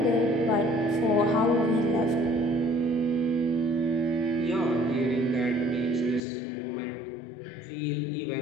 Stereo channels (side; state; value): right; drops out; at 6.2 s